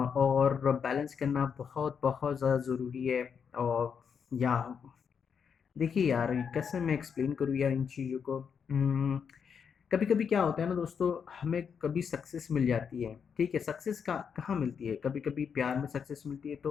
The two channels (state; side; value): quieter; right; 6.8 dB